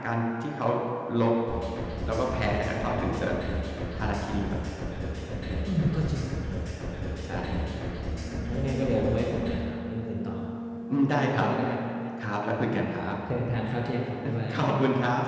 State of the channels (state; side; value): identical; both; correlation 1.00